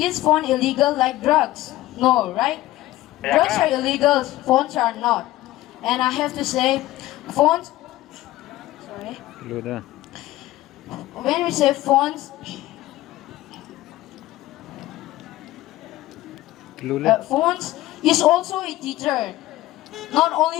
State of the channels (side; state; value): right; quieter; 16.2 dB